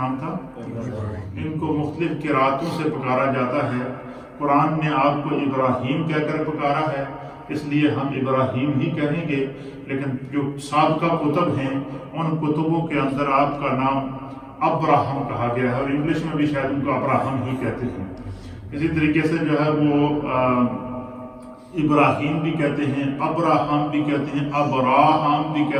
تھا؟ ان کو مختلف قراتوں سے پکارا جاتا ہے۔ قرآن نے آپ کو ابراہیم کہہ کر پکارا ہے، اس لیے ہم ابراہیم ہی کہیں گے، لیکن جو سابقہ کتب ہیں ان کتبوں کے اندر آپ کا نام ابراہم کہا گیا ہے، اور انگلش میں بھی شاید ان کو ابراہم ہی کہتے ہیں۔ اسی طریقے سے جو ہے وہ ابراہیم بھی کہتے ہیں، ابراہم بھی کہتے ہیں، ابراہم بھی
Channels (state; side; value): identical; both; correlation 1.00